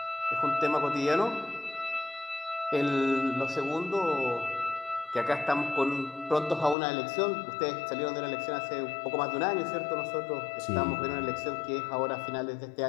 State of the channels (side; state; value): right; drops out; at 6.8 s